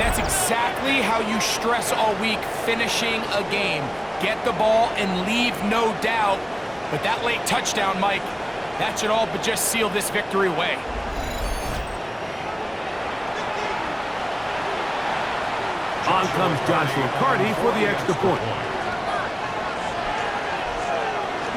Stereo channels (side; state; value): both; identical; correlation 1.00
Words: that's exactly how you stress all week, finishing a game. Get the ball and leave no doubt. But that late touchdown, Mike, that should all but just seal this victory away. On comes Joshua Carty for the extra point.